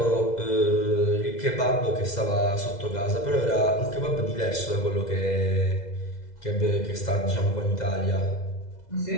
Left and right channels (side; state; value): right; late; 2.0 ms